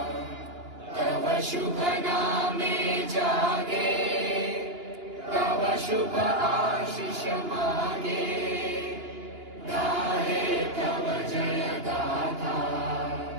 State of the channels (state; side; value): late; left; 2.9 ms